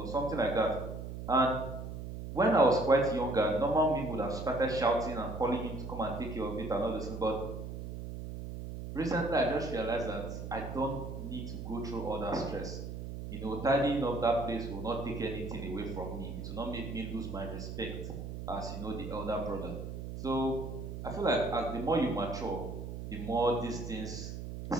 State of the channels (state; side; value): noise; right; hum, 7 dB below the sound